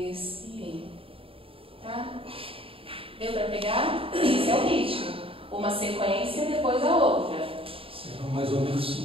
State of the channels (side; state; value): left; late; 0.27 ms